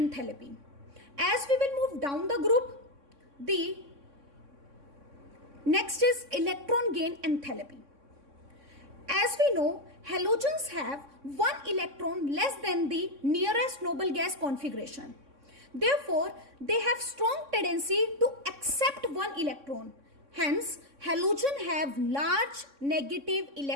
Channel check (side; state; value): left; late; 3.6 ms